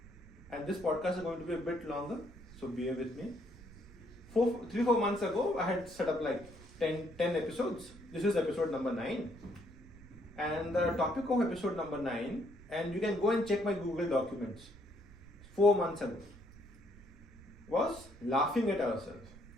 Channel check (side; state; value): right; noise; rumble, 20 dB below the sound